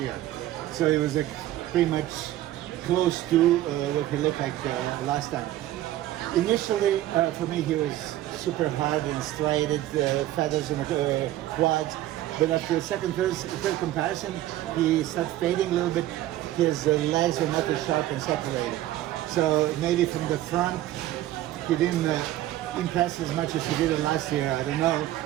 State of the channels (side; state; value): left; quieter; 14.3 dB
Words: So it was like pretty much close to what he looked like last time. Initially, for me, he was super hard and striated, feathers in the quads. But after the third comparison, he started fading a little bit. His legs were not as sharp and separated. So maybe from the front, he didn't impress as much as he did last year. I don't know.